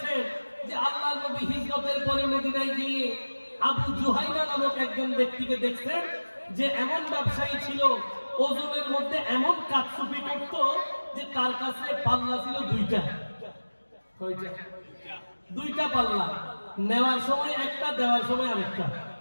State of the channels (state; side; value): inverted; both; correlation -1.00